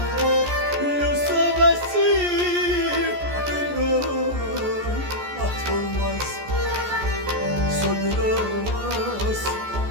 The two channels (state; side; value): late; left; 14 ms